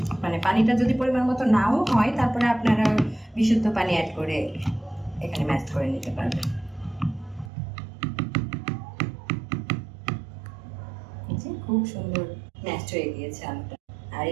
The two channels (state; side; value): drops out; left; at 7.5 s